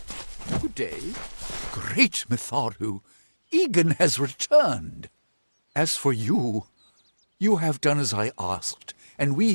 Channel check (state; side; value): inverted; both; correlation -1.00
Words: Good day. Great Mitharu. Egan has returned. As for you, you have done as I asked, and we